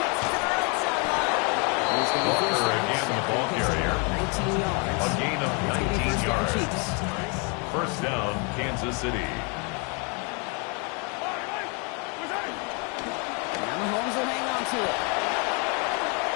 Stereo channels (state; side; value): quieter; right; 34.2 dB